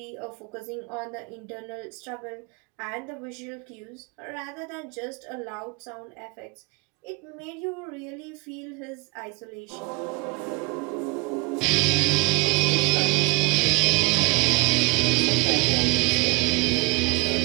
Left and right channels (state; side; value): quieter; left; 26.9 dB